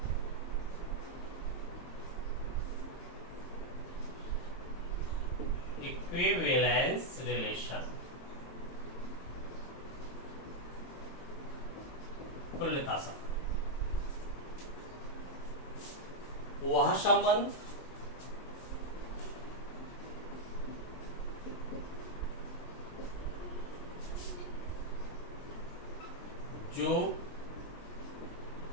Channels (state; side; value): late; right; 22 ms